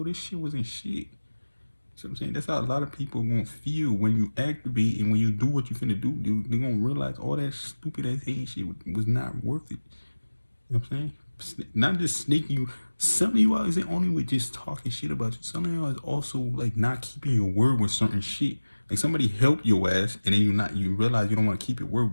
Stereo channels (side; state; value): both; inverted; correlation -1.00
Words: this shit wasn't shit. So I'm saying, that's how a lot of people are gonna feel when you activate and when you do what you finna do. They're gonna realize all that stupid ass hate shit was not worth it. You know what I'm saying? Not just snaking you. Some of you out isn't only with just talking shit about you. Some of you is also like not keeping your word with certain shit. Like somebody helped your ass and then you realize you don't want to keep your word,